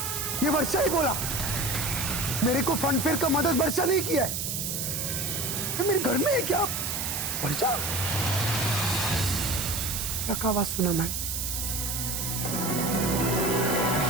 ये वर्षा ही बोला। मेरे को फनफेयर का मदद वर्षा नहीं किया है। ये मेरे घर में है क्या? वर्षा का आवाज सुना मैन।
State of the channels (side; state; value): right; noise; hiss, 2 dB below the sound